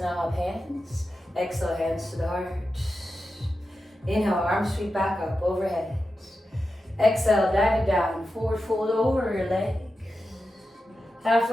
up hands. Exhale, hands to the heart. Inhale, arms sweep back up, overhead. Exhale, dive it down. Forward fold over your legs.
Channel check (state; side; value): normal; both; correlation 0.91